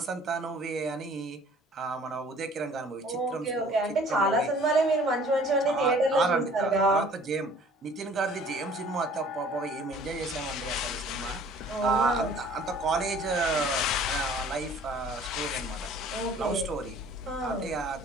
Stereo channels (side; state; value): both; normal; correlation 0.52